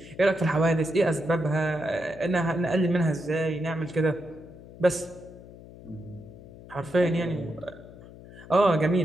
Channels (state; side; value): noise; left; hum, 18 dB below the sound